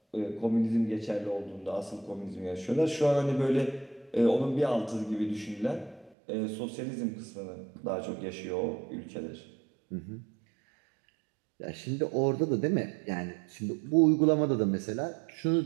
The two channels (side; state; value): left; drops out; at 6.2 s